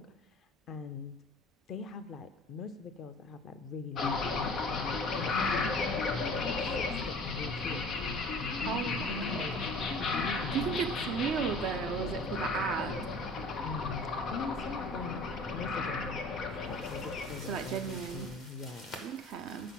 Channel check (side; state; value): both; normal; correlation 0.44